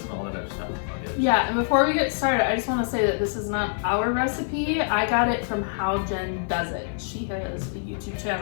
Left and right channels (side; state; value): right; silent; 56 dB below the other